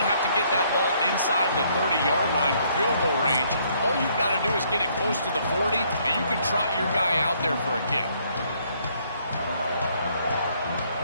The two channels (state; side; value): inverted; both; correlation -0.67